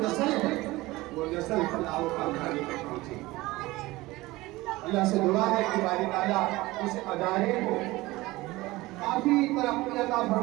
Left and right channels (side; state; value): left; quieter; 19.8 dB